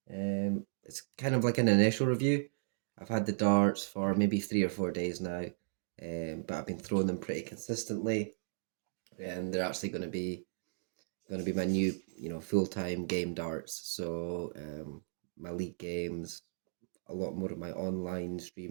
It's kind of like an initial review. I've had the darts for maybe 3 or 4 days now, but I've been throwing them pretty consistently, and they're actually going to be my new, full-time game darts. So, my league games, a lot more of my online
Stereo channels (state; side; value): silent; left; digital silence